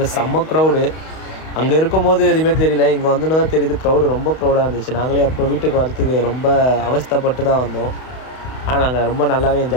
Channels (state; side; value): late; right; 31 ms